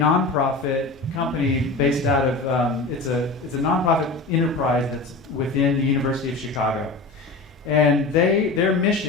company based out of, it's a nonprofit enterprise that's within the University of Chicago. And their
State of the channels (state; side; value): quieter; right; 3.5 dB